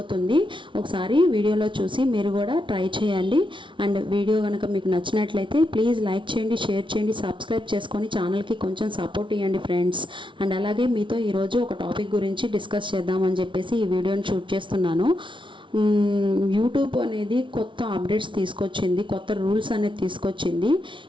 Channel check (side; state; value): left; late; 0.24 ms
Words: ఒకసారి వీడియోలో చూసి మీరు కూడా ట్రై చేయండి. అండ్ వీడియో కనుక మీకు నచ్చినట్లయితే ప్లీజ్ లైక్ చేయండి, షేర్ చేయండి, సబ్స్క్రైబ్ చేసుకొని ఛానల్కి కొంచెం సపోర్ట్ ఇవ్వండి ఫ్రెండ్స్. అండ్ అలాగే మీతో ఈరోజు ఒక టాపిక్ గురించి డిస్కస్ చేద్దామని చెప్పేసి ఈ వీడియోని షూట్ చేస్తున్నాను. యూట్యూబ్ అనేది కొత్త అప్డేట్స్ తీసుకొచ్చింది, కొత్త రూల్స్ అనేది తీసుకొచ్చింది.